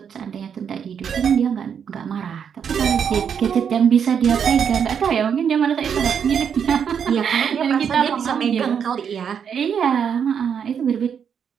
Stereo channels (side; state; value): left; quieter; 7.5 dB